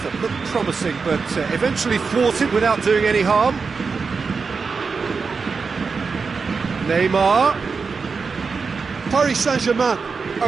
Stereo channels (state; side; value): quieter; left; 4.9 dB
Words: that looked promising, but eventually thwarted without doing any harm. Neymar. Paris Saint-Germain